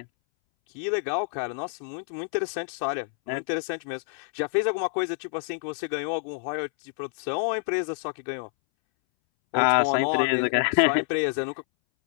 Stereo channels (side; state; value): right; silent; 60 dB below the other